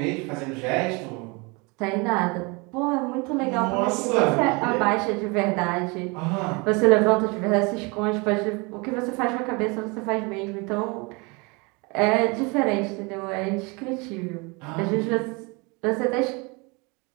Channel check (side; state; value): left; quieter; 28.6 dB